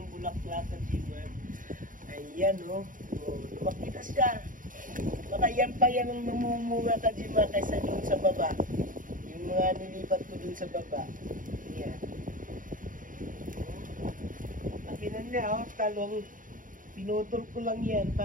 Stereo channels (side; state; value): left; late; 0.39 ms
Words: bulaklak Kajimar. Ayan oh. Oh, lumaki na siya. Baka yan pa yan ang mamumunga Kajimar kaysa doon sa baba. Mga nilipat ko dun sa baba. Yan. Pakinan niya, oh, talong. Pinutol ko lang yan.